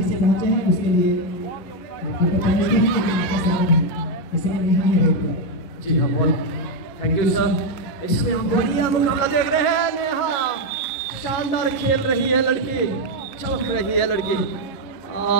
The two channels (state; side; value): late; right; 11 ms